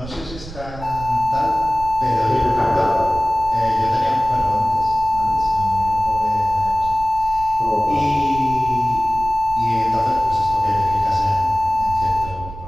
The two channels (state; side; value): noise; right; rumble, 13 dB below the sound